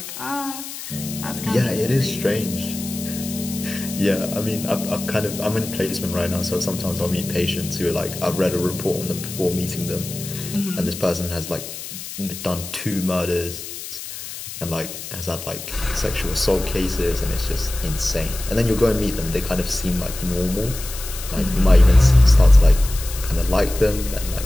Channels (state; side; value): noise; left; hiss, 10 dB below the sound